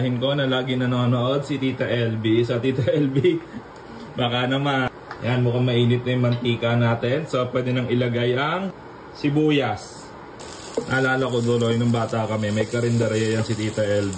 ko na lagi nanonood, si Tita LB. So Tita LB, baka naman. Yan, mukhang mainit na yung mantika natin. So pwede nang ilagay ang sibuyas. Naalala ko duloy nung bata kami, may karinderya yan si Tita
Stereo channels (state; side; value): identical; both; correlation 1.00